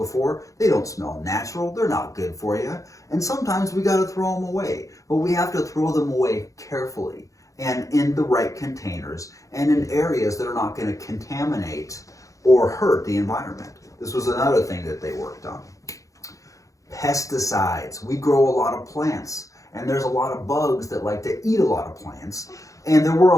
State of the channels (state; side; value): late; right; 0.16 ms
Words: They don't smell natural. They're not good for you. And sometimes we got to throw them away. But we have to throw them away carefully and in the right containers and in areas that are not going to contaminate or hurt the environment. This was another thing that they worked on. Pesticides. We grow a lot of plants, and there's a lot of bugs that like to eat a lot of plants. And there were